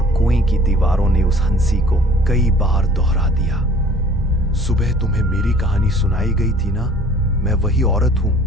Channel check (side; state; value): both; normal; correlation 0.52